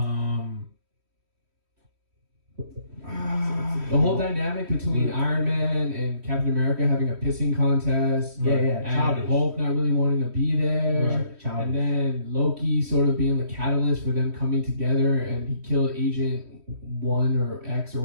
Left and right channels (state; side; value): late; left; 3.1 ms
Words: The whole dynamic between Iron Man and Captain America having a pissing contest. Yeah, And childish. Hulk not really wanting to be there. Right, childish. And then Loki sort of being the catalyst for them coming together, and he killed Agent 1 or X or